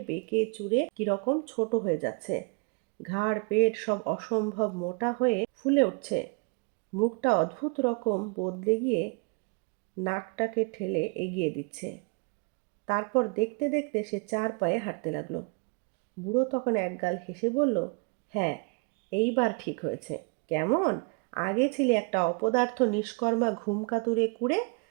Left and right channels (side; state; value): left; quieter; 33.6 dB